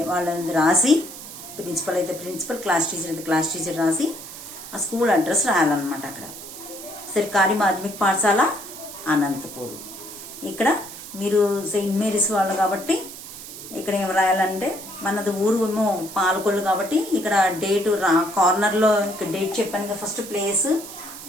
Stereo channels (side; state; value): right; noise; hiss, 13 dB below the sound